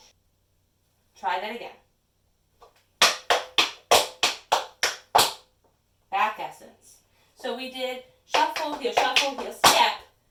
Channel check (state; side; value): identical; both; correlation 1.00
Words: Try that again. Back essence. So we did shuffle, heel, step.